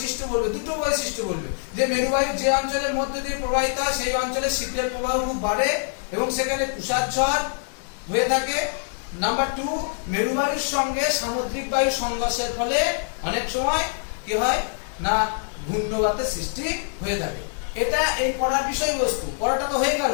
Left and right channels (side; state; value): right; silent; 60 dB below the other